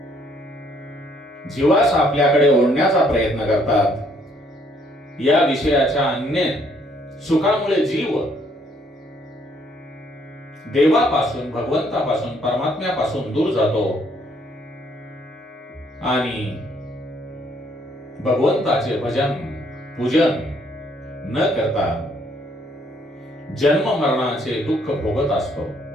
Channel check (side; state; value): both; normal; correlation 0.67